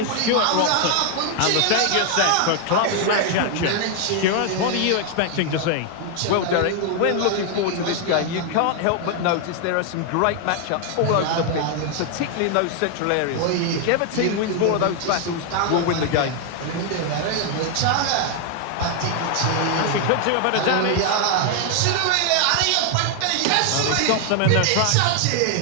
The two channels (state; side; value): different; both; correlation 0.00